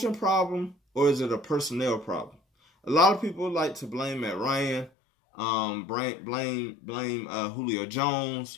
problem or is it a personnel problem? A lot of people like to blame Matt Ryan, blame Julio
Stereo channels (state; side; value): drops out; right; at 4.9 s